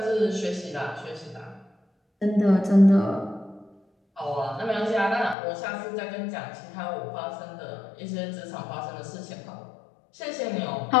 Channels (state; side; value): drops out; right; at 5.4 s